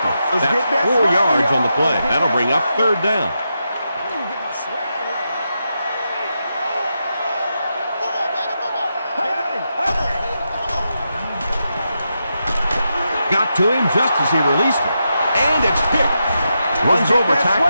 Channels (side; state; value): both; inverted; correlation -0.86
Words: That's 4 yards on the play. That'll bring up third down. Got to him just as he released it. And it's picked. Runs over